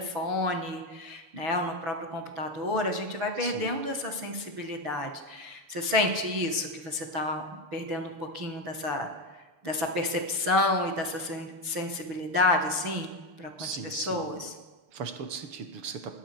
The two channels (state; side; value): late; left; 6.7 ms